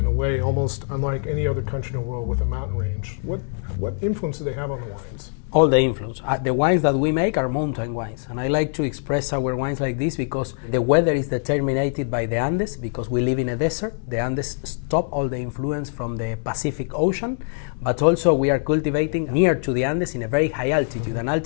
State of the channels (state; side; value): silent; right; digital silence